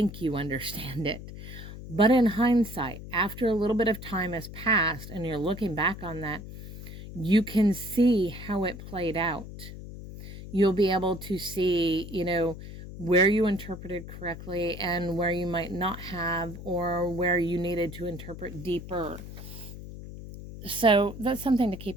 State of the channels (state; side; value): noise; left; hum, 12 dB below the sound